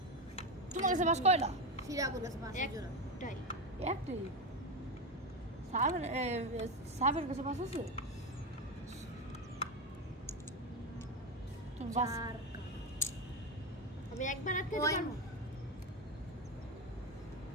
তোমার কাছে পাঁচ কয়টা সিরা করে পাঁচের জোড়া একটাই সাবের কাছে পাঁচ আছে তুমি পাঁচ আমি একবার আটকে পারবো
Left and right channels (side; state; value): both; normal; correlation 0.14